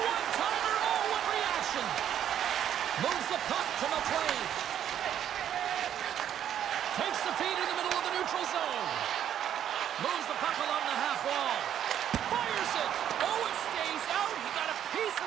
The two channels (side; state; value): left; quieter; 10.1 dB